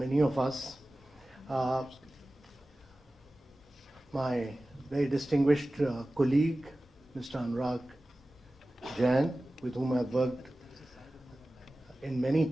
of us. My very distinguished colleague, Mr. Anurag Jain, with whom I've worked in many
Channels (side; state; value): both; normal; correlation 0.96